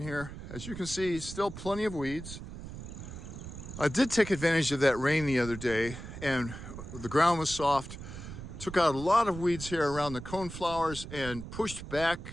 As you can see, still plenty of weeds. I did take advantage of that rain the other day, and the ground was soft. Took out a lot of weeds here around the coneflowers and pushed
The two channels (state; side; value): noise; right; rumble, 11 dB below the sound